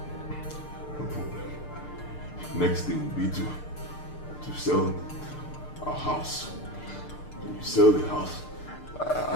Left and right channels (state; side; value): late; right; 6.7 ms